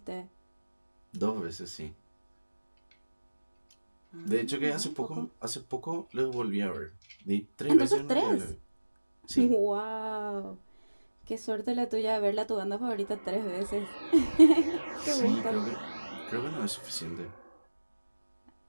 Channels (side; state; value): both; inverted; correlation -1.00